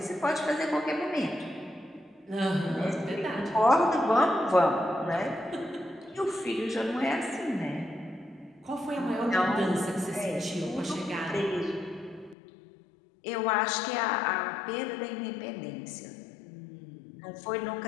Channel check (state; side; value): drops out; right; at 12.4 s